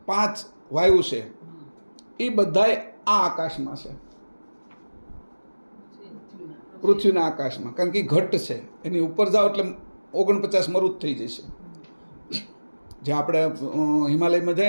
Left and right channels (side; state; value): both; inverted; correlation -1.00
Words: 5 વાયુ છે એ બધાય આ આકાશમાં છે, પૃથ્વીના આકાશમાં. કારણ કે ઘટ છે, એની ઉપર જાઓ એટલે 49 મરુત થઈ જશે. જે આપણે હિમાલયમાં